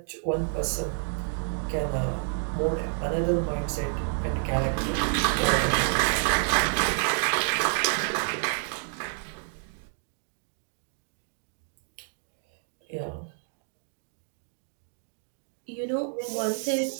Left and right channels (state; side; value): silent; left; 58 dB below the other